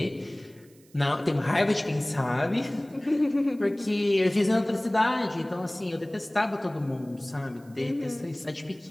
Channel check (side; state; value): right; noise; hiss, 29 dB below the sound